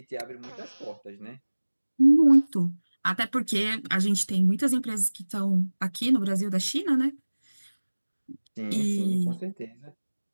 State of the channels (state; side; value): inverted; both; correlation -1.00